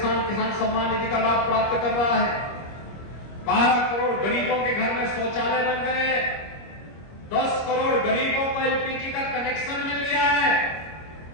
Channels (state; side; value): late; right; 25 ms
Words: सम्मान निधि का लाभ प्राप्त कर रहा है। 12 करोड़ गरीबों के घर में शौचालय बन गए। 10 करोड़ गरीबों को एलपीजी का कनेक्शन मिल गया है।